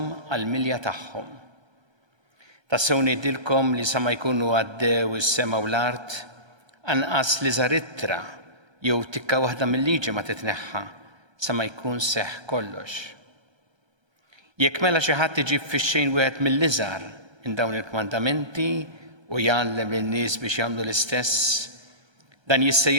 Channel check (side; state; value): left; late; 1.3 ms